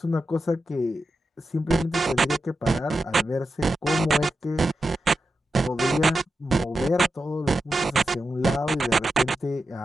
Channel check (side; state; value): both; normal; correlation 0.90